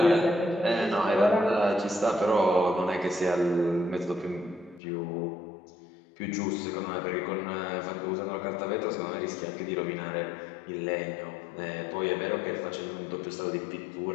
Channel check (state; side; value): drops out; right; at 4.8 s